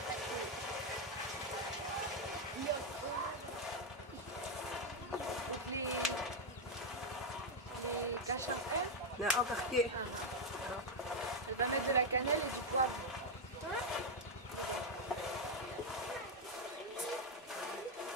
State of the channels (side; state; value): both; normal; correlation 0.03